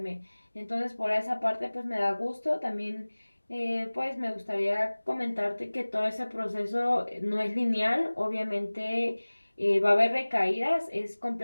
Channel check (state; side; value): inverted; both; correlation -1.00